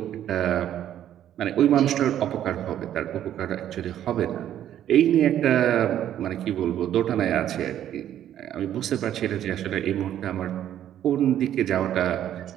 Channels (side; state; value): left; quieter; 11.1 dB